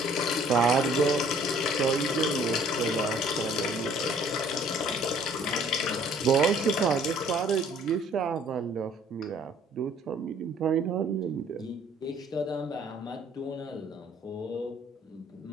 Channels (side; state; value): both; normal; correlation 0.57